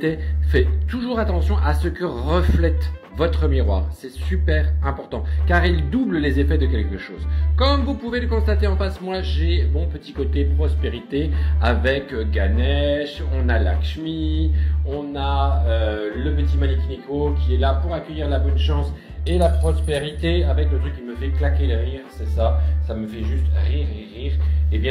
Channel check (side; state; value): both; identical; correlation 1.00